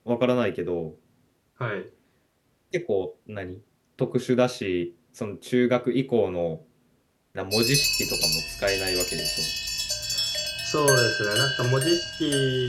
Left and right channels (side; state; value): both; identical; correlation 1.00